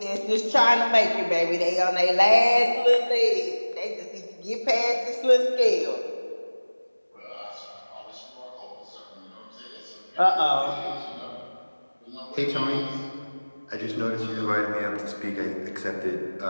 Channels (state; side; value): inverted; both; correlation -1.00